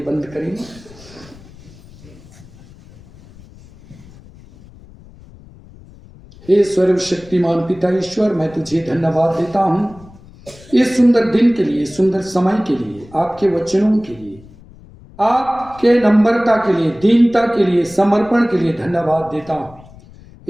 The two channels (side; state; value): left; noise; rumble, 22 dB below the sound